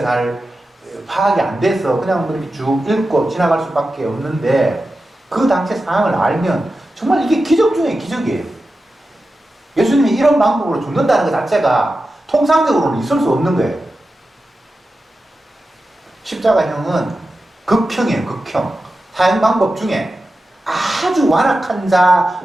잘 파악이 안 돼서 그냥 그렇게 쭉 읽고 지나갈 수밖에 없는데 그 당시 상황을 알면 정말 이게 기적 중에 기적이에요. 예수님이 이런 방법으로 죽는다는 것 자체가 통상적으로는 있을 수 없는 거예요. 십자가형은 극형이에요. 극형. 사형 방법 중에 아주 완악한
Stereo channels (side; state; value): both; normal; correlation 0.92